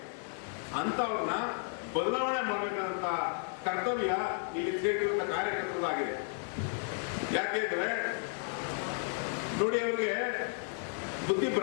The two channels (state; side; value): silent; right; 56 dB below the other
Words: ಅಂತವ್ರನ್ನ ಬದಲಾವಣೆ ಮಾಡಬೇಕಾದಂತ ಕರ್ತವ್ಯ ಇಲ್ಲಿ ಸೇರಿರುವಂತ ಕಾರ್ಯಕರ್ತರಾಗಿದೆ. ಯಾಕೆಂದ್ರೆ ನೋಡಿ, ಅವ್ರಿಗೆ ಬುದ್ಧಿ